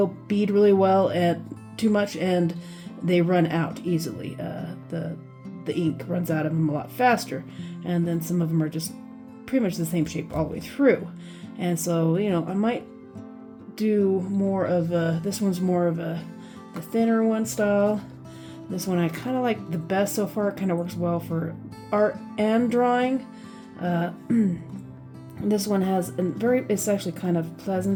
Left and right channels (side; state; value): both; identical; correlation 1.00